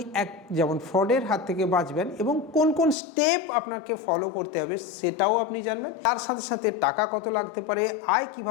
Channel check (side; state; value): right; drops out; at 3.0 s